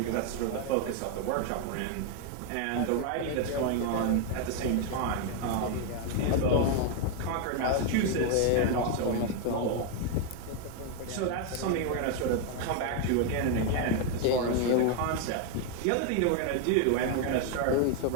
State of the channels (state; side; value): different; both; correlation 0.01